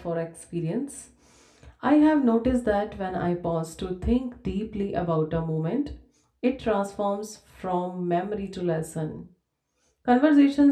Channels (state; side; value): identical; both; correlation 1.00